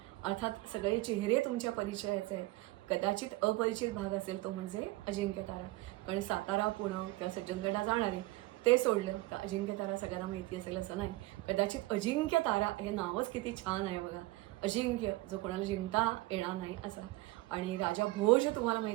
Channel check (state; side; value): quieter; left; 19.7 dB